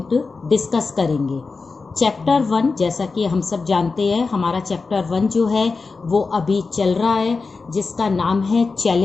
डिस्कस करेंगे। चैप्टर 1 जैसा कि हम सब जानते हैं, हमारा चैप्टर 1 जो है वो अभी चल रहा है, जिसका नाम है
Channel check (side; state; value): right; quieter; 4.3 dB